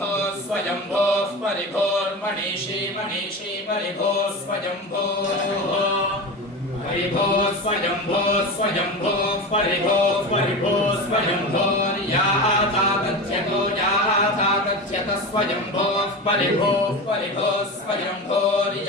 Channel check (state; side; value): normal; both; correlation 0.26